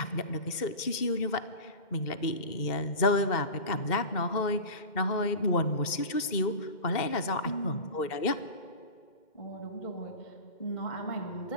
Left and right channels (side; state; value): right; late; 2.1 ms